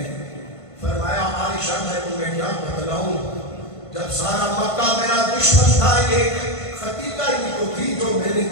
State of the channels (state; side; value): late; right; 1.5 ms